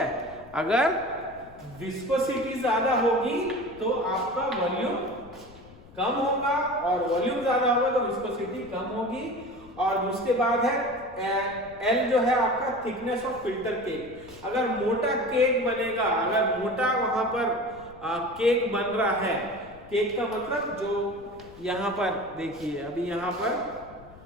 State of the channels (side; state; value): left; noise; rumble, 21 dB below the sound